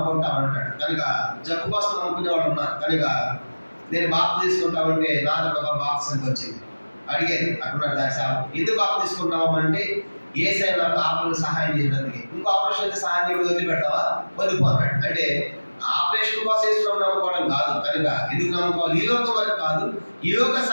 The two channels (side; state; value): both; inverted; correlation -1.00